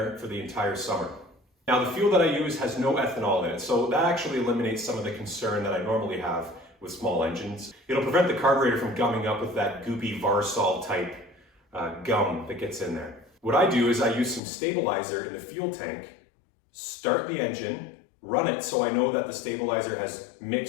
for the entire summer. Now the fuel that I use has no ethanol in it, so that actually eliminates some of the concern that I normally have with small engines. It'll prevent the carburetor from gumming up with that goopy Varsol type gum that gets in there. What I do is I use some stabilizer in the fuel tank, start the engine, run it so I know that the stabilizer has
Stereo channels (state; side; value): drops out; right; at 14.4 s